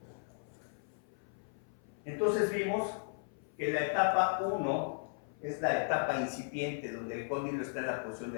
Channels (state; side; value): silent; right; 54 dB below the other